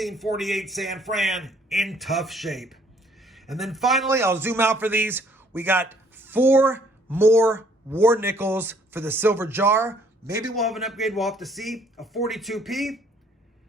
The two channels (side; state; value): both; normal; correlation 0.62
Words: San Fran in tough shape. And then finally, I'll zoom out for these. We got 4 more war nickels for the silver jar. Maybe we'll have an upgrade. We'll have to see. A 42p,